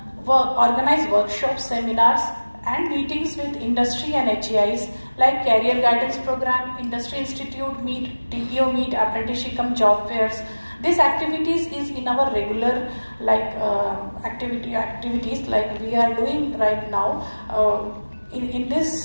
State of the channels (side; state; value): both; inverted; correlation -1.00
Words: Organize workshops, seminars and meetings with industry and HEIs like career guidance program, industry institute meet, TPO meet, apprenticeship job fairs. These activities is in our regular activities like we are doing right now. In